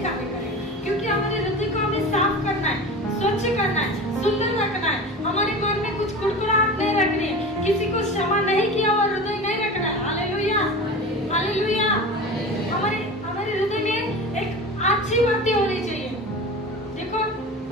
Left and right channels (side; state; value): both; normal; correlation 0.32